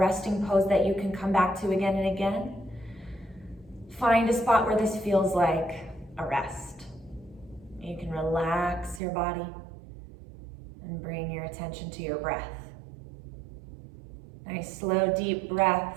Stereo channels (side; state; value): left; drops out; at 9.0 s